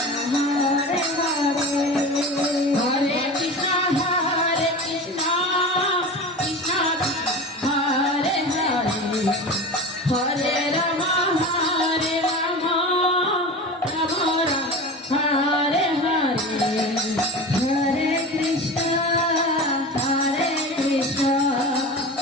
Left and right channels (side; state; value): both; normal; correlation 0.31